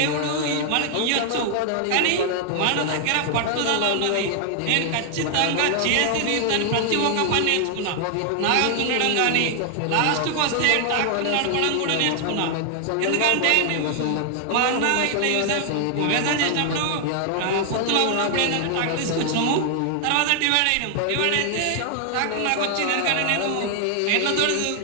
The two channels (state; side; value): different; both; correlation 0.00